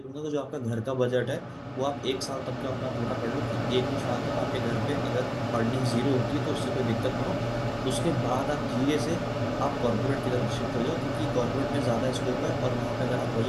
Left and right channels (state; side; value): identical; both; correlation 1.00